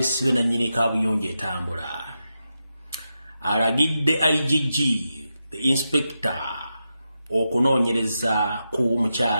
na nnyini kabuyonje etambula. Alagidde IGG the inspector okunoonyereza ku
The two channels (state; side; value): inverted; both; correlation -0.88